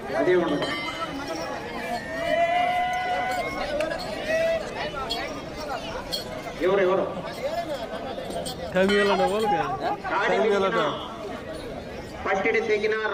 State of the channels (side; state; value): both; identical; correlation 1.00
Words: అదే ఉండదు. ఎవరెవరు పట్టిడి తెగినా,